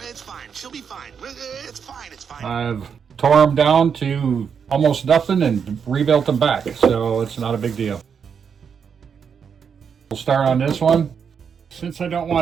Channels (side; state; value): left; quieter; 6.9 dB